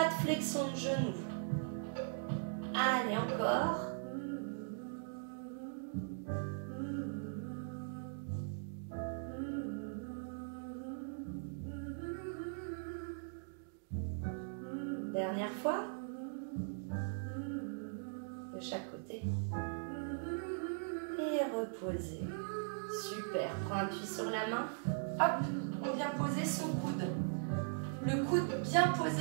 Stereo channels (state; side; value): silent; left; digital silence